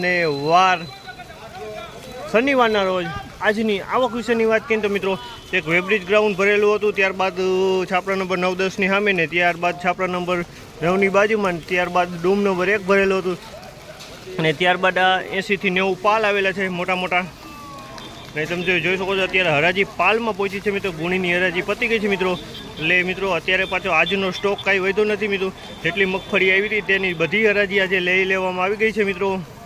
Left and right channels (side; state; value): both; identical; correlation 1.00